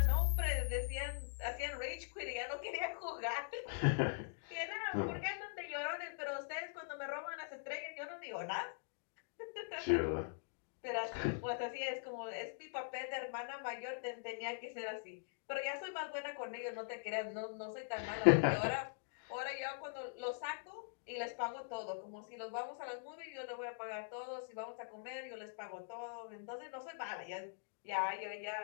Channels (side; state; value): right; silent; digital silence